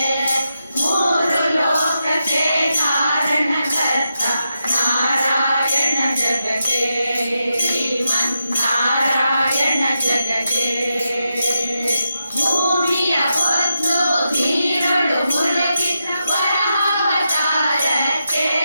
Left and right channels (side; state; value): both; inverted; correlation -0.86